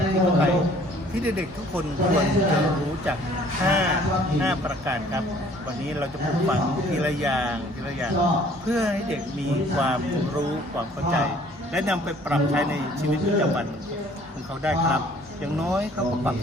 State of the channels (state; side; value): normal; both; correlation 0.56